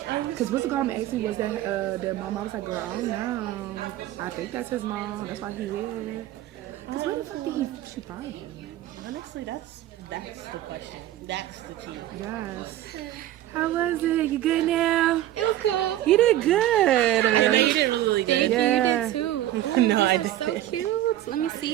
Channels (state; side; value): quieter; left; 13.7 dB